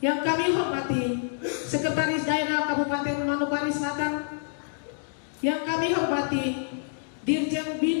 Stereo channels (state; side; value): silent; right; digital silence